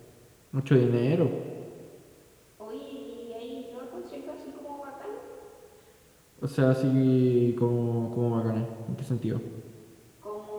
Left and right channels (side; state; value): both; identical; correlation 1.00